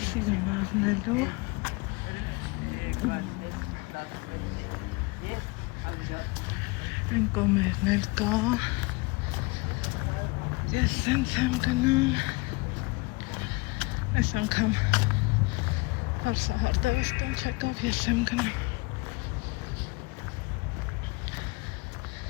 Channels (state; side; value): quieter; right; 25.9 dB